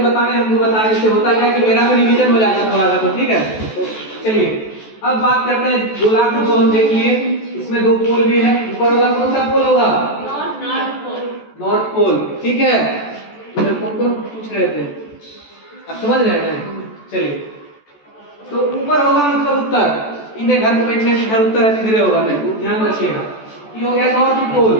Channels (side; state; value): right; late; 14 ms